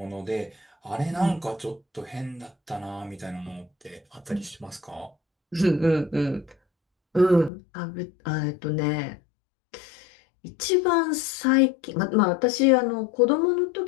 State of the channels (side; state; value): right; drops out; at 7.5 s